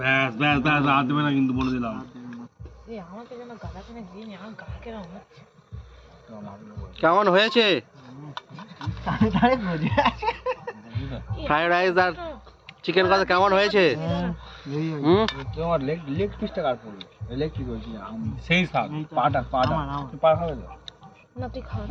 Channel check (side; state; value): both; identical; correlation 1.00